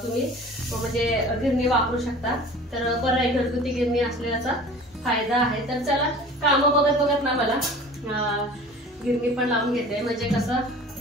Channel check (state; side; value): normal; both; correlation 0.43